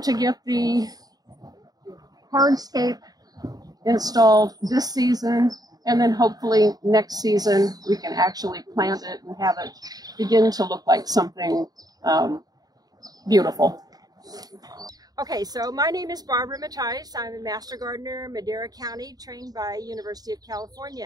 to get the hardscape installed this season, and then hopefully next season we can actually plant it and have it begin to look like something beautiful. Okay, so my name is Barbara Mattias. I'm a master gardener in Madera County, trained by University of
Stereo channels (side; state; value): left; late; 0.18 ms